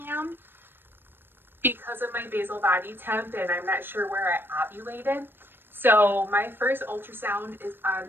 am because of my basal body temp, and I'm not sure where I ovulated. So my first ultrasound is on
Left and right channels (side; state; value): left; late; 0.099 ms